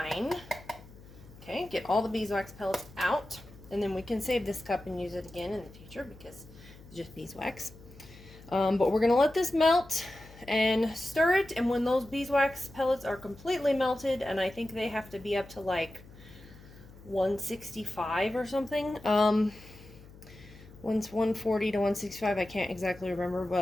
Okay, get all the beeswax pellets out. And then we can save this cup and use it again in the future because it's just beeswax. But we're going to let this melt and stir it, and when those beeswax pellets are completely melted, and I think they have to be up to like 165 or something, once 140 to 165, I can't exactly remember,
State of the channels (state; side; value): noise; left; hum, 20 dB below the sound